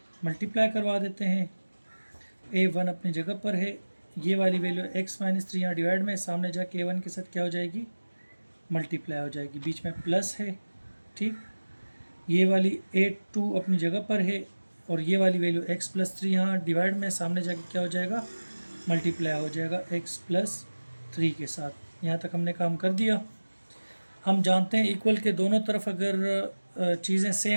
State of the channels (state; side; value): inverted; both; correlation -1.00